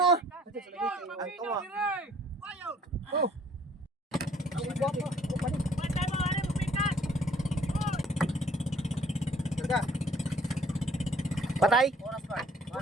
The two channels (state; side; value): normal; both; correlation 0.59